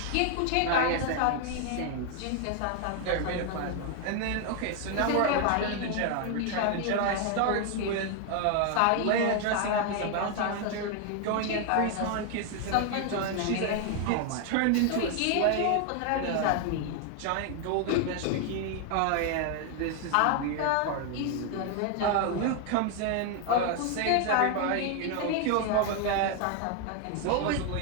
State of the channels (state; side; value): different; both; correlation 0.00